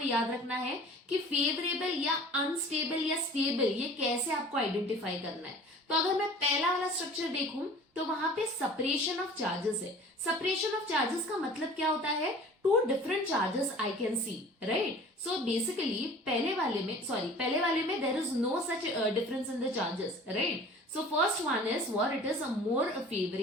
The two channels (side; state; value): both; normal; correlation 0.45